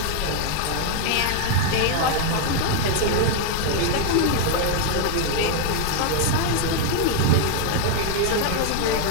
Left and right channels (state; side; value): different; both; correlation 0.00